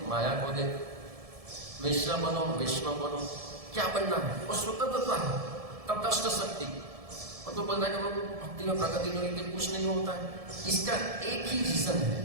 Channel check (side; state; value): left; late; 1.7 ms